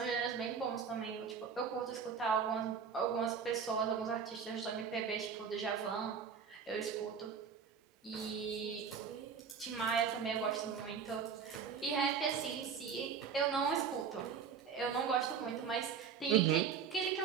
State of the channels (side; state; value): left; quieter; 6.6 dB